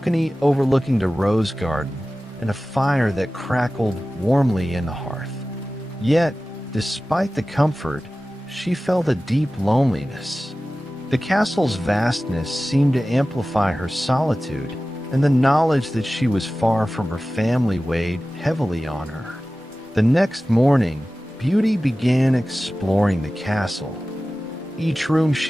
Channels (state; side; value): normal; both; correlation 0.96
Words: overlooking the rose garden, and a fire that crackled warmly in the hearth. Yet, despite the comfort, she felt a deep loneliness. The castle's vastness seemed to amplify her solitude, and the knowledge that she was far from her family weighed heavily on her. The next morning, Beauty began exploring the castle. Each room